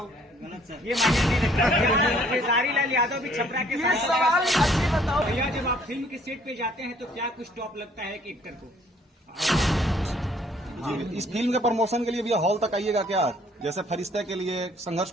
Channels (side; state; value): both; normal; correlation 0.61